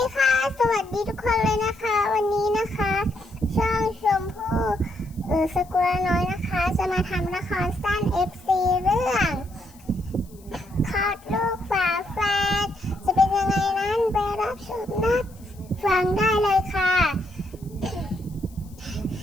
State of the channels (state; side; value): noise; left; hiss, 27 dB below the sound